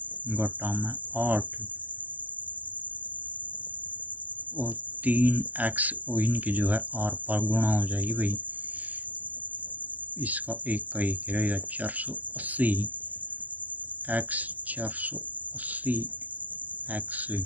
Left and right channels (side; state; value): left; late; 0.080 ms